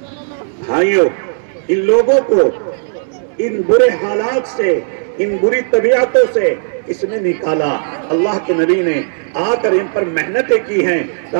بھائیوں، ان لوگوں کو ان برے حالات سے، ان بری طبیعتوں سے اس نے نکالا۔ اللہ کے نبی نے آ کر ان پر محنتیں کی ہیں۔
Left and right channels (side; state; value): left; silent; digital silence